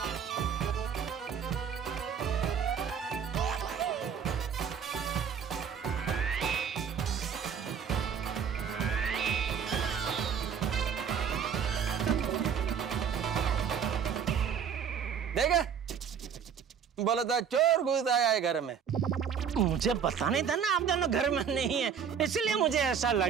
देखा, बोला था चोर घुस आया है घर में। मुझे पता नहीं था ना आप दोनों घर में नहीं है, इसलिए मुझे ऐसा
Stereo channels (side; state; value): left; quieter; 7.5 dB